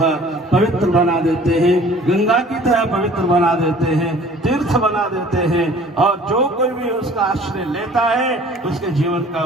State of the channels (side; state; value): both; normal; correlation 0.50